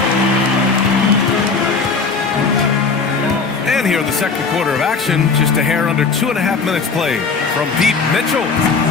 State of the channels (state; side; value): quieter; right; 4.7 dB